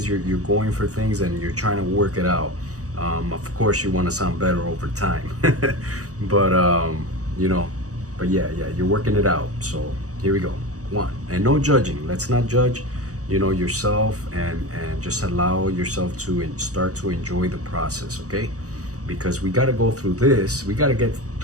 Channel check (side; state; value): left; late; 0.66 ms